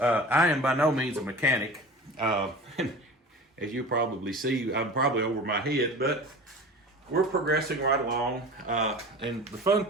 am by no means a mechanic. As you probably see, I'm probably over my head, but we're progressing right along. And the fun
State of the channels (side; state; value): both; normal; correlation 0.36